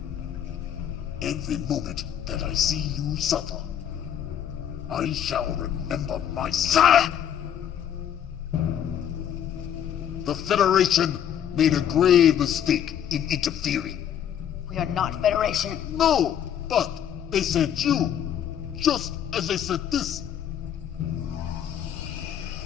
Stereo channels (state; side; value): quieter; right; 9.5 dB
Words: Every moment that I see you suffer, I shall remember my sire! The Federation made a grave mistake in interfering. We are not Federation. No, but they sent you, just as they sent this.